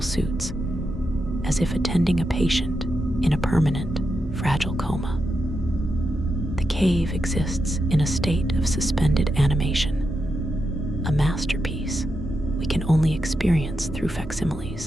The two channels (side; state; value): both; normal; correlation 0.86